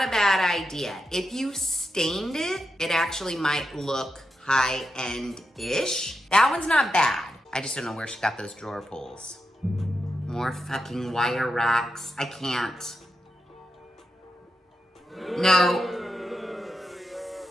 a bad idea. If you stained it, it actually might look high-end-ish. That one's not bad. I just don't know where she got those drawer pulls. More fucking wire racks. I can't. No.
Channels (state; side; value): normal; both; correlation 0.87